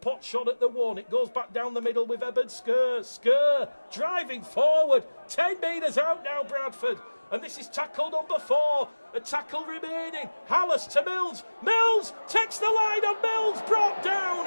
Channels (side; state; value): both; inverted; correlation -1.00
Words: shot at the one? It goes back down the middle with Eben Skur. Skur driving forward. 10 metres out now, Bradford. And this is tackle number 4. A tackle remaining. Hallis to Mills. Mills takes the line on Mills. Brought